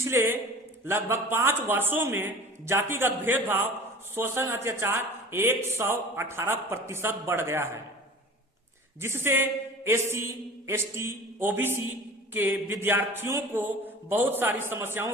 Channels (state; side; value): normal; both; correlation 0.40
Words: लगभग 5 वर्षों में जातिगत भेदभाव, शोषण, अत्याचार 118% बढ़ गया है, जिससे एससी, एसटी, ओबीसी के विद्यार्थियों को बहुत सारी